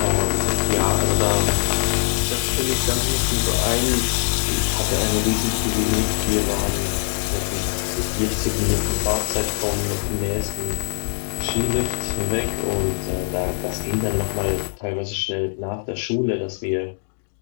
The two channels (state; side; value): silent; right; digital silence